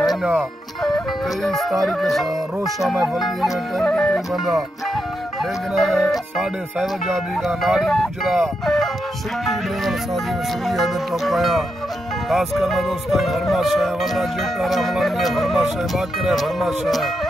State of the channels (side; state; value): both; normal; correlation 0.84